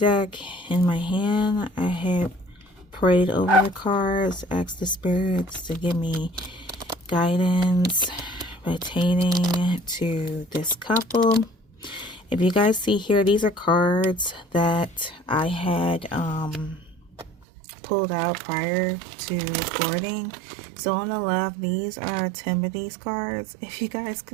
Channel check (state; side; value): drops out; left; at 17.4 s